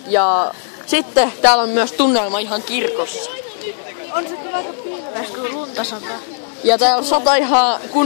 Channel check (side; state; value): right; silent; digital silence